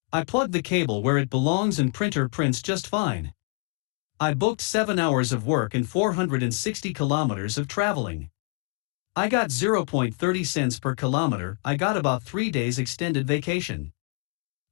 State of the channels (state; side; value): quieter; right; 33.9 dB